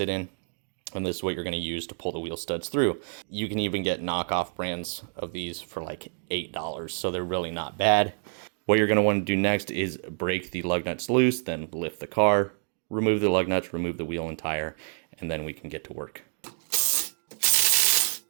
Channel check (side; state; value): left; silent; digital silence